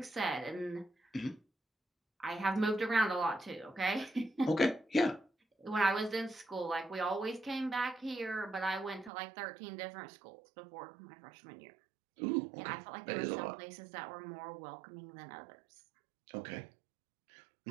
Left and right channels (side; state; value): left; drops out; at 9.1 s